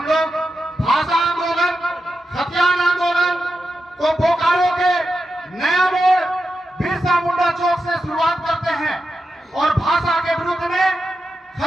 लोग भाषा आंदोलन, खतियान आंदोलन को बोकारो के नया मोड़ बिरसा मुंडा चौक से शुरुआत करते हैं और भाषा के विरुद्ध में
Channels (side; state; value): both; normal; correlation 0.89